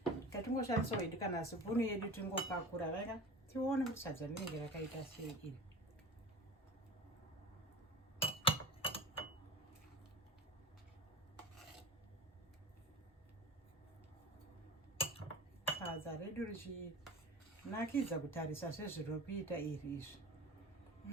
Katingoshandisa hedu kana sipunu yedu tingopakura raka tione kuti sadza rinenge rakaita sei iri. Sadza redu richinakidza kutarisa sezviri kuita iri izvi.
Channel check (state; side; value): normal; both; correlation 0.35